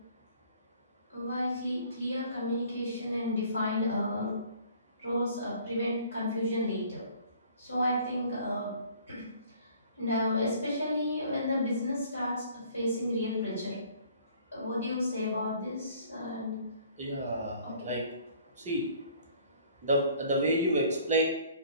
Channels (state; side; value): inverted; both; correlation -0.55